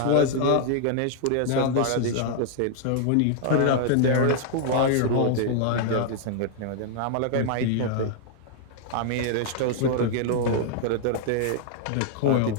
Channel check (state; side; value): different; both; correlation 0.00